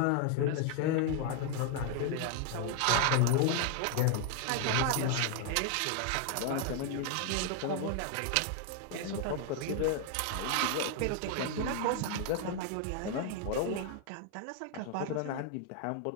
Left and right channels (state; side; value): different; both; correlation 0.00